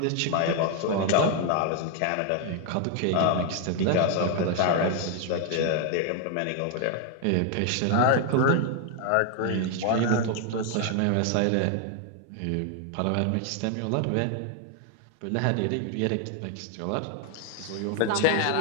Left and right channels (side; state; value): both; different; correlation 0.00